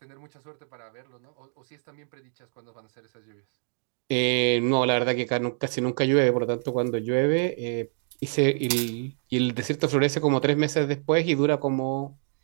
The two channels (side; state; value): left; silent; digital silence